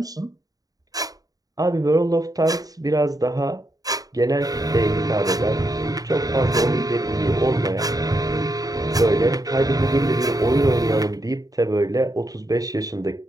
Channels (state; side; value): late; left; 0.18 ms